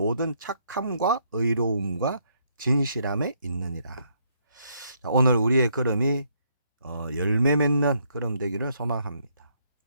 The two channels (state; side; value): inverted; both; correlation -0.71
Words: 착함과 의로움과 진실함에 있느니라. 자, 오늘 우리의 걸음이 열매 맺는 걸음 되기를 소망합니다.